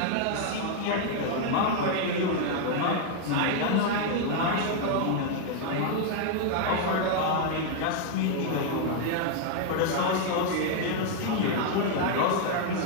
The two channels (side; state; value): both; different; correlation 0.00